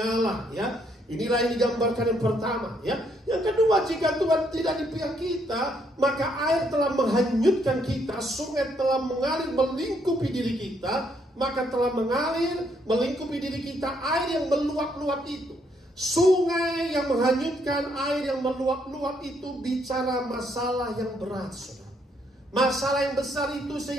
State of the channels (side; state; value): both; normal; correlation 0.72